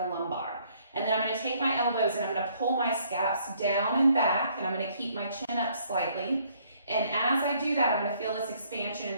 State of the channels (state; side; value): inverted; both; correlation -0.64